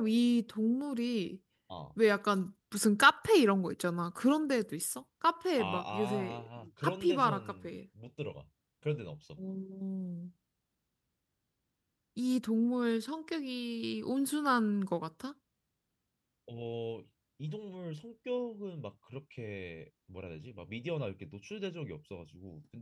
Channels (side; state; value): both; identical; correlation 1.00